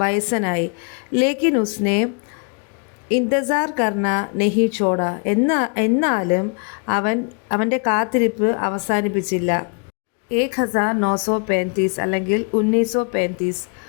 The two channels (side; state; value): right; quieter; 37.1 dB